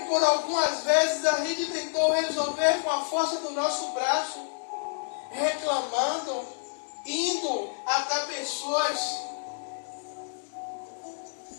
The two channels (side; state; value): right; silent; 59 dB below the other